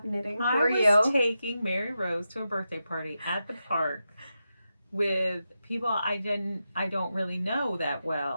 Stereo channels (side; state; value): both; inverted; correlation -0.89